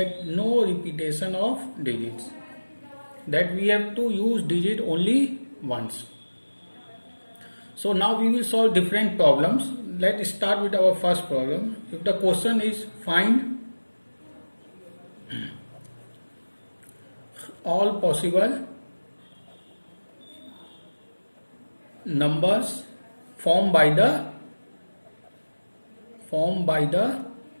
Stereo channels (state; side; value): inverted; both; correlation -1.00